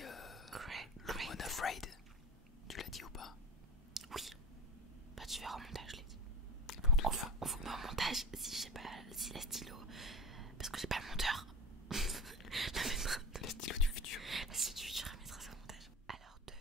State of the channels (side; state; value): both; normal; correlation 0.29